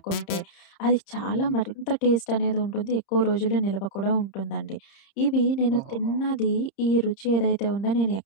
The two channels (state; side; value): late; right; 30 ms